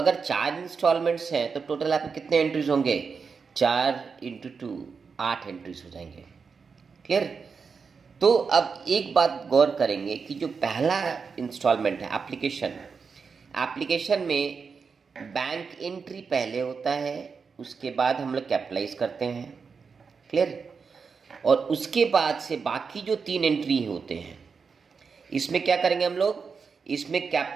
4 इंस्टॉलमेंट्स हैं तो टोटल आपके कितने एंट्रीज होंगे? 4 इंटू 2 8 एंट्रीज हो जाएंगे। क्लियर? तो अब एक बात गौर करेंगे कि जो पहला इंस्टॉलमेंट है एप्लीकेशन में बैंक एंट्री पहले होता है, उसके बाद हम लोग कैपिटलाइज करते हैं। क्लियर? और उसके बाद से बाकी जो 3 एंट्री होते हैं, इसमें क्या करेंगे हम लोग, इसमें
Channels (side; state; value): left; quieter; 5.4 dB